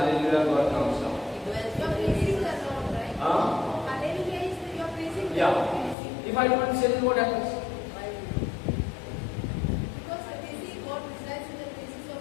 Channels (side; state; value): right; drops out; at 6.0 s